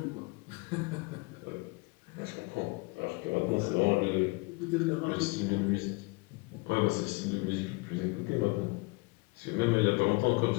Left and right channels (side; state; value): right; quieter; 26.8 dB